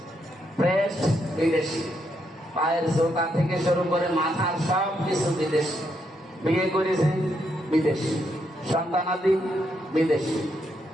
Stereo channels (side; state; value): both; normal; correlation 0.78